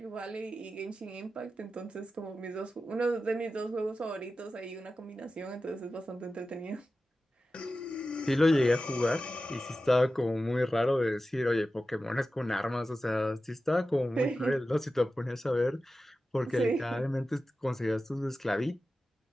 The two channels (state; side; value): normal; both; correlation 0.93